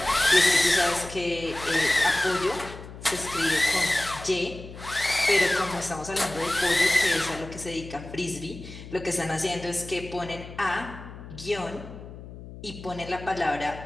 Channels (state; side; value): noise; left; hum, 14 dB below the sound